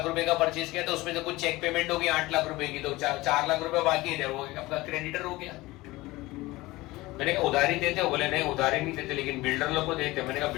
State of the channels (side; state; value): right; quieter; 19.9 dB